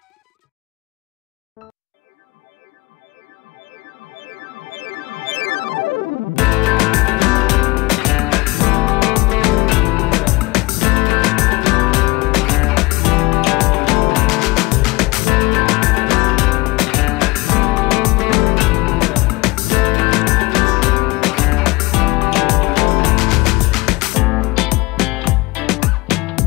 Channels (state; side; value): quieter; right; 22.1 dB